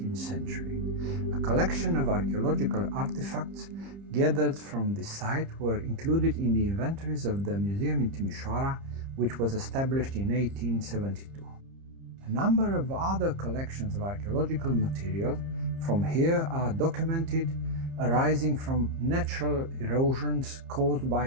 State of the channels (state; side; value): late; left; 30 ms